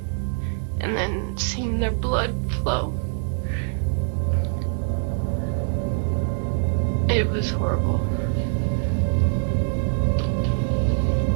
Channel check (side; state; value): left; silent; 60 dB below the other